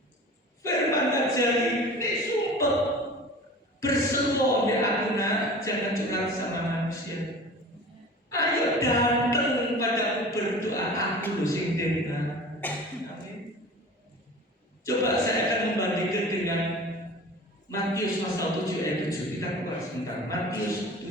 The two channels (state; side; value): normal; both; correlation 0.39